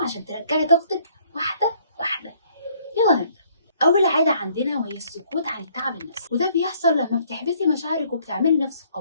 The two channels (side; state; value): both; inverted; correlation -0.63